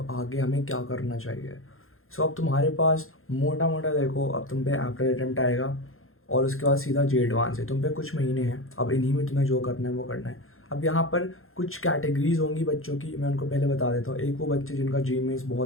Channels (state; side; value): late; right; 0.61 ms